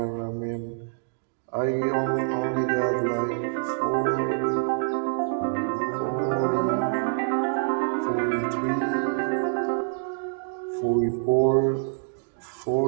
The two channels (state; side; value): silent; left; digital silence